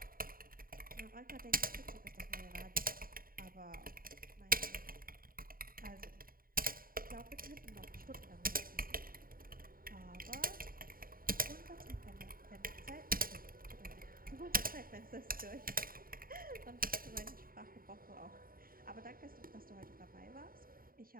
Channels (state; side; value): late; left; 0.42 ms